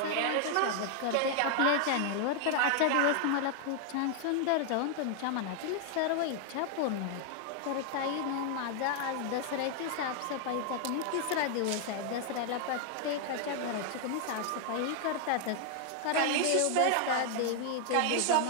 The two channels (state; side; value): different; both; correlation 0.00